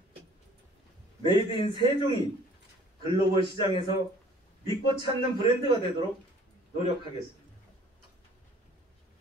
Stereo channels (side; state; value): both; normal; correlation 0.53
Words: 메이드 인 세종이 글로벌 시장에서 믿고 찾는 브랜드가 되도록 노력하겠습니다.